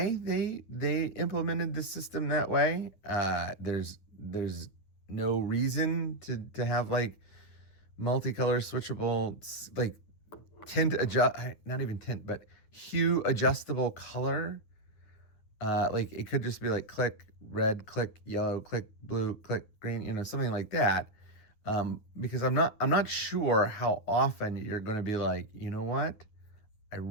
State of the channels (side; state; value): right; late; 9.7 ms